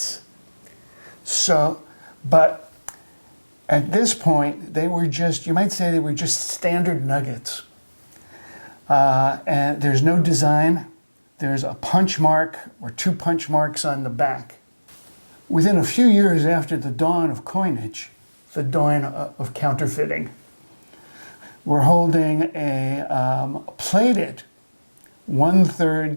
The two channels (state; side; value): inverted; both; correlation -1.00